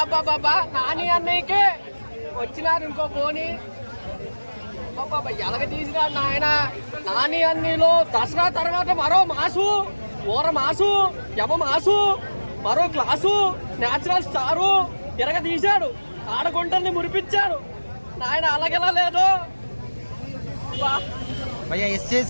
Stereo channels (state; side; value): inverted; both; correlation -1.00